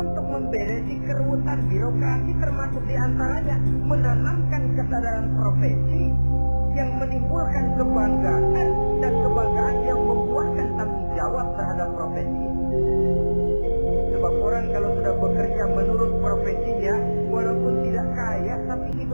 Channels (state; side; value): inverted; both; correlation -1.00